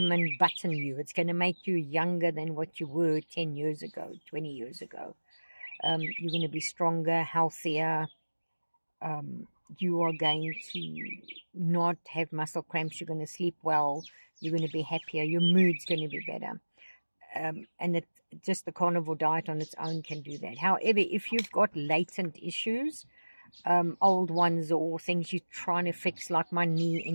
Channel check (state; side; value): inverted; both; correlation -1.00